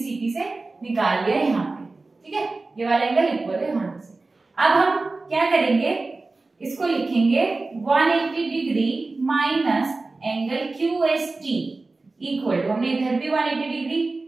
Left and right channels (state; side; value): quieter; left; 3.5 dB